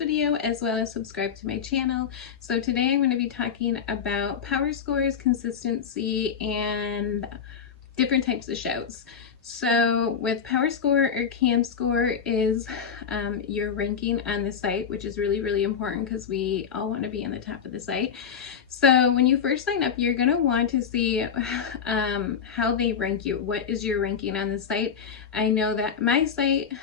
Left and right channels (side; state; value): right; quieter; 7.2 dB